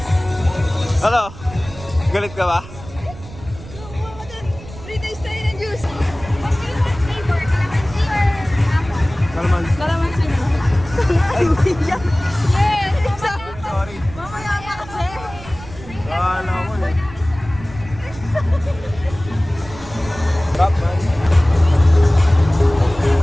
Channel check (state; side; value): noise; right; rumble, 16 dB below the sound